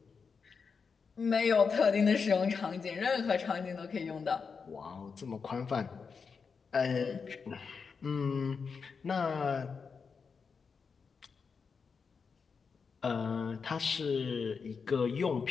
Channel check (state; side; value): quieter; right; 5.5 dB